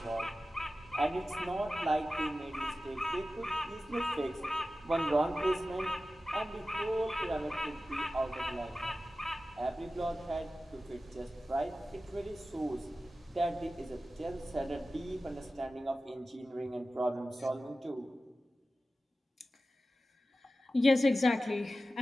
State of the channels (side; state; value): both; normal; correlation 0.94